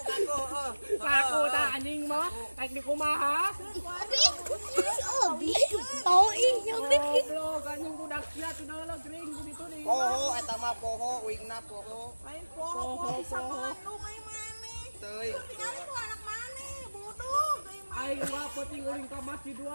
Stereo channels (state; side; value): inverted; both; correlation -1.00